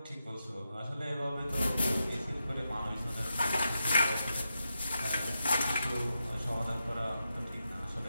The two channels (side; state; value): both; inverted; correlation -0.87